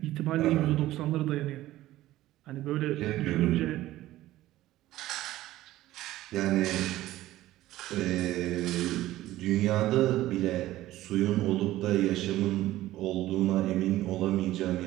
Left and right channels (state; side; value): quieter; left; 15.5 dB